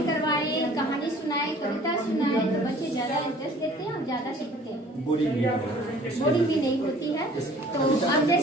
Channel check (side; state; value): both; normal; correlation 0.51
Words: करवाए कहानी सुनाए कविता सुनाए तो बच्चे ज्यादा इंटरेस्ट लेते हैं और ज्यादा सीखते हैं। बोरिंग भी नहीं होती है। तो अब